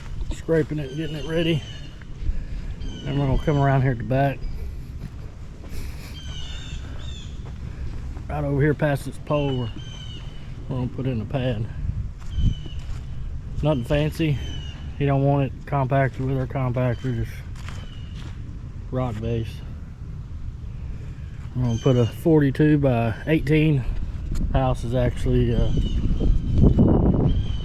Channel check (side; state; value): both; identical; correlation 1.00